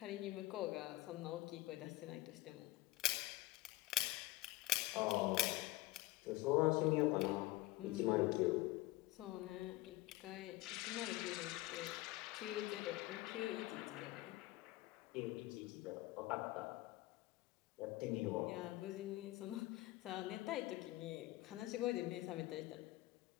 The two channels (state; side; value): quieter; right; 18.6 dB